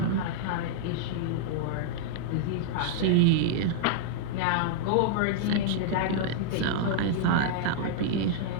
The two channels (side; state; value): both; different; correlation -0.02